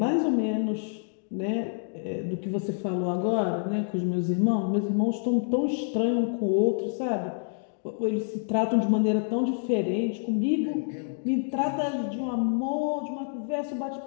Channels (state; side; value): silent; right; digital silence